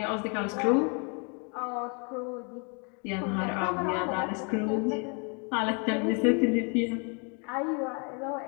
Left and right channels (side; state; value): right; quieter; 35.9 dB